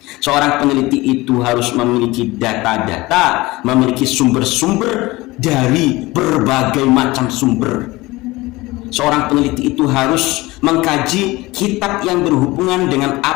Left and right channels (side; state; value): right; quieter; 20.5 dB